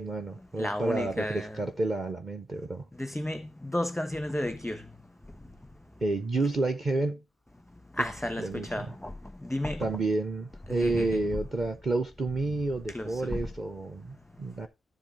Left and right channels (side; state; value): both; normal; correlation 0.87